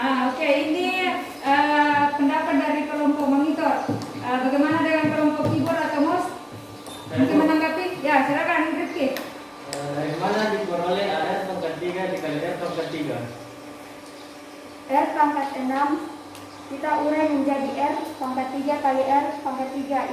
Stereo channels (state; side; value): identical; both; correlation 1.00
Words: Oke, ini pendapat dari kelompok monitor. Bagaimana dengan kelompok keyboard atau mouse? Mungkin menanggapi? Ya, silakan Rifki. Dari mana diperoleh AR pangkat 3 dikali R pangkat 3? R pangkat 6 kita urai menjadi R pangkat 3 kali R pangkat